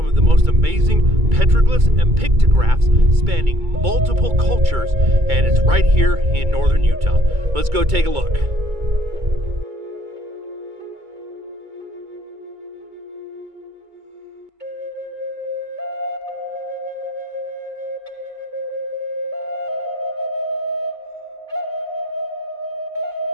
of the most amazing petroglyphs and pictographs spanning multiple cultures, and it's right here in northern Utah. Let's go take a look.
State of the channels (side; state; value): left; late; 2.3 ms